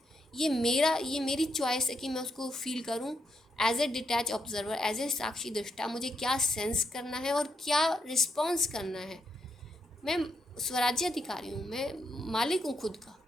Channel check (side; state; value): both; normal; correlation 0.79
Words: ये मेरी चॉइस है कि मैं उसको फील करूं as a detach observer, as a साक्षी दृष्टा। मुझे क्या सेंस करना है और क्या रिस्पॉन्स करना है। मैं स्वराज्य अधिकारी हूँ, मैं मालिक हूँ खुद का।